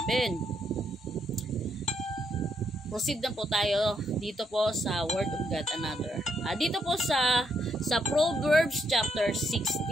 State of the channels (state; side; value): normal; both; correlation 0.76